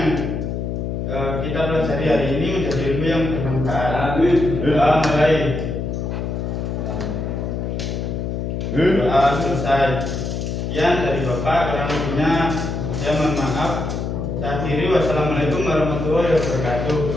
kita pelajari hari ini menjadi ilmu yang bermanfaat. Doa mulai. Doa selesai. Sekian dari Bapak, kurang lebihnya saya mohon maaf. Saya akhiri, wassalamualaikum warahmatullahi wabarakatuh.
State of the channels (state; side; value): noise; left; hum, 3 dB below the sound